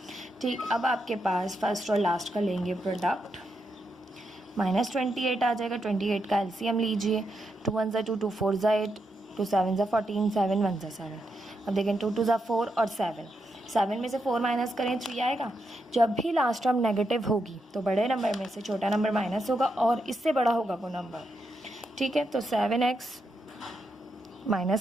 ठीक, अब आपके पास फर्स्ट और लास्ट का लेंगे प्रोडक्ट, माइनस 28 आ जाएगा, 28 का एलसीएम लीजिए, 2 1 ज़ा 2, 2 4 ज़ा 8, 2 7 ज़ा 14, 7 1 ज़ा 7। अब देखें 2 2 ज़ा 4 और 7, 7 में से 4 माइनस करें 3 आएगा। जब भी लास्ट टर्म नेगेटिव होगी तो बड़े नंबर में से छोटा नंबर माइनस होगा और इससे बड़ा होगा वो नंबर, ठीक है। तो 7x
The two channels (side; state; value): both; normal; correlation 0.83